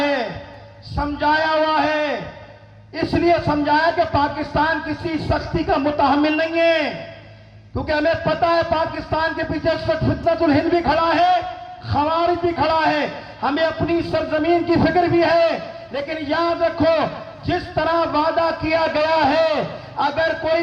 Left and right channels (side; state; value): both; identical; correlation 1.00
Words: سمجھایا ہوا ہے. اس لیے سمجھایا کہ پاکستان کسی سختی کا متحمل نہیں ہے، کیونکہ ہمیں پتا ہے پاکستان کے پیچھے فتنۃ الہند بھی کھڑا ہے، خوارج بھی کھڑا ہے. ہمیں اپنی سرزمین کی فکر بھی ہے. لیکن یاد رکھو، جس طرح وعدہ کیا گیا ہے، اگر